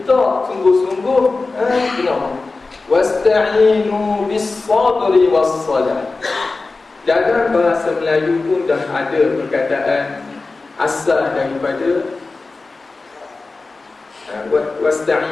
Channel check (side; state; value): right; quieter; 3.7 dB